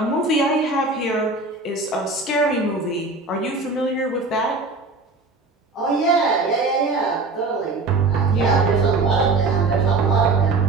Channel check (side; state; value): left; quieter; 3.6 dB